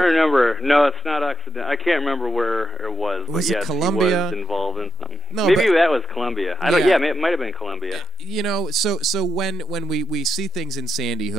remember. No, it's not Occidental. I can't remember where it was. Was it yes, Columbia? He was involved in something. No, maybe that was Columbia. Yeah, it might have been Columbia. So when we see things in Sandy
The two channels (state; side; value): normal; both; correlation 0.86